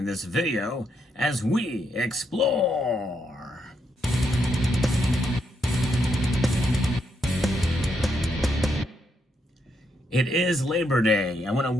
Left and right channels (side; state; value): both; normal; correlation 0.78